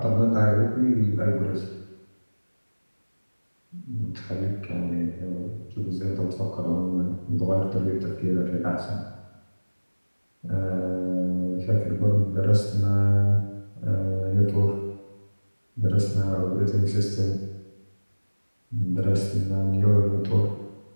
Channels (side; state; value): both; inverted; correlation -1.00